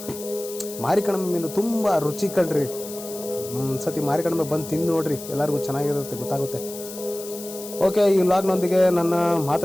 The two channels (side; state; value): left; noise; hiss, 13 dB below the sound